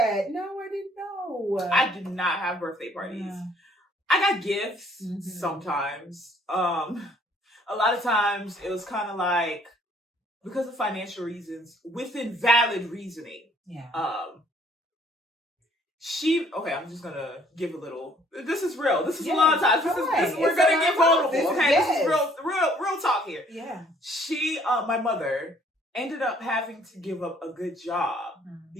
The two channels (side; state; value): both; normal; correlation 0.61